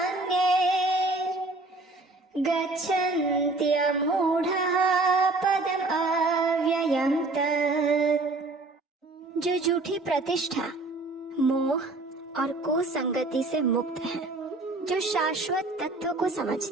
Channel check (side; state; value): left; quieter; 3.1 dB